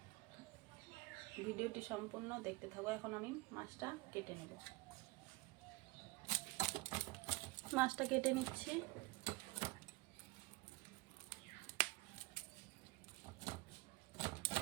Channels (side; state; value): left; quieter; 23.1 dB